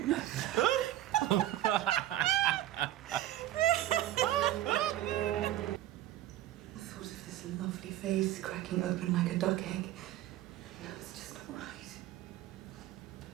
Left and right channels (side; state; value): left; quieter; 13.7 dB